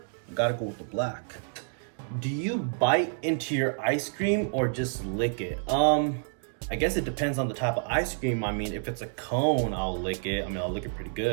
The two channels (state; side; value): silent; left; digital silence